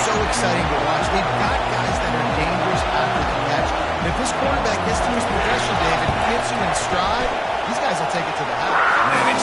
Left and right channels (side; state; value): both; identical; correlation 1.00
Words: so exciting to watch, they've got guys that are dangerous after the catch. And if this quarterback gets to his progression, David, gets you in stride, these guys will take it to the house. Man,